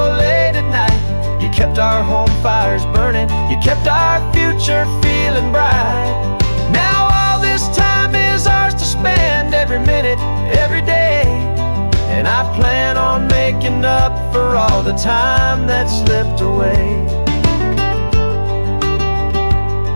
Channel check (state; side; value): inverted; both; correlation -1.00